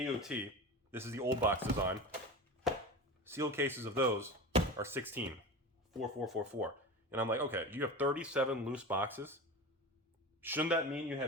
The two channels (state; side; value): normal; both; correlation 0.28